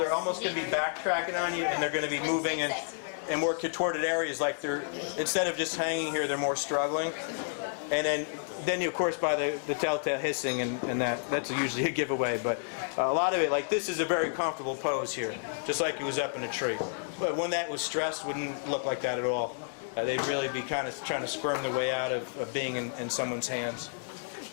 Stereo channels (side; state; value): right; silent; digital silence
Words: almost going to be backtracking on you, and they're going to be moving in more contorted areas, like they're, instead of just hanging here, they're more struggling. And then you, of course, by the telltale hissing, and that's usually a giveaway. But a lot of it, like this is a very comfortable pose here, just like it was up in a tree. But when that was stressed, wouldn't look like that at all. They'd really be kind of trying to squirm their way out of being in someone's hands.